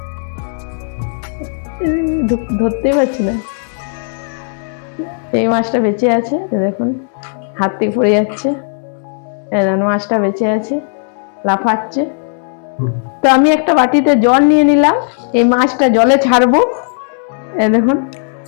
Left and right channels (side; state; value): right; silent; digital silence